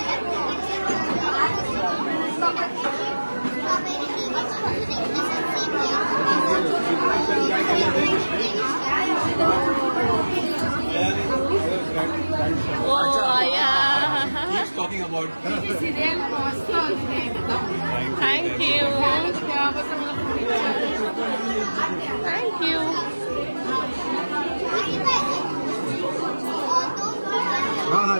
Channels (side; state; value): both; inverted; correlation -1.00